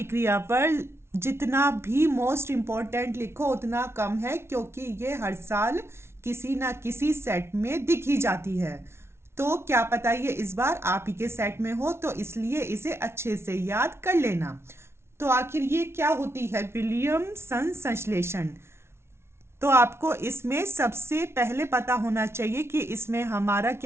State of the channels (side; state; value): left; late; 0.12 ms